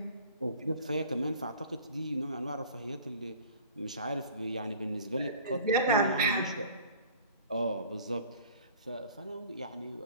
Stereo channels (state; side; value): inverted; both; correlation -0.47